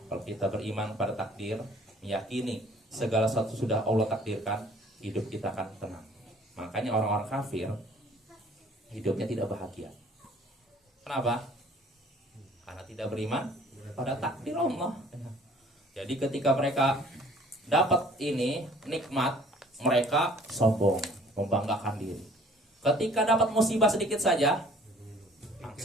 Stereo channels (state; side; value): normal; both; correlation 0.54